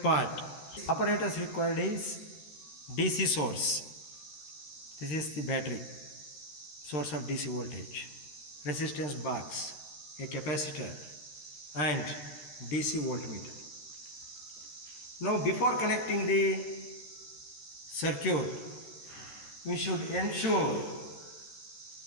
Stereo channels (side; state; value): right; late; 13 ms